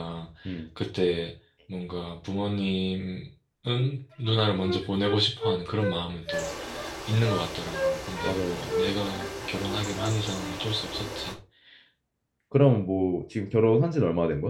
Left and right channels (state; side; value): identical; both; correlation 1.00